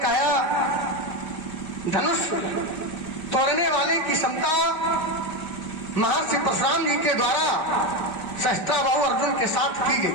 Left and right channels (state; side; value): late; right; 5.1 ms